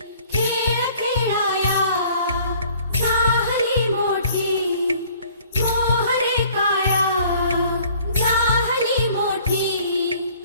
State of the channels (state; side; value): inverted; both; correlation -0.54